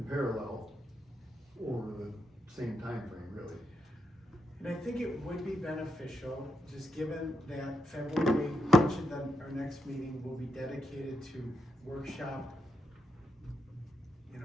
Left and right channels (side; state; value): both; normal; correlation 0.82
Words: parallel over the same time frame, really. And I think it would be beneficial, just given that February, much of our next meeting will be dedicated to workshop, you know,